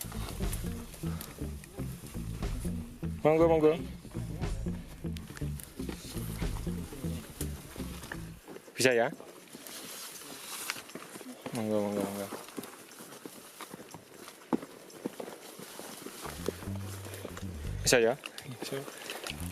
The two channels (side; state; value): both; identical; correlation 1.00